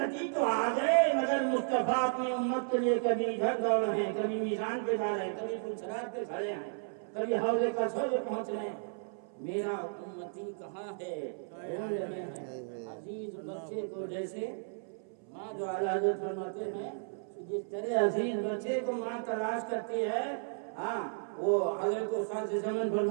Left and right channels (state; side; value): silent; left; 55 dB below the other